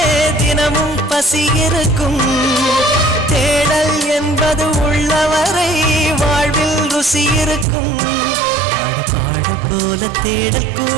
தினமும் பசி இருக்கும். தேடல் என்பது உள்ளவரை வாழ்வில் ருசி இருக்கும். பாட போல தேடல்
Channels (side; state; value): left; drops out; at 7.7 s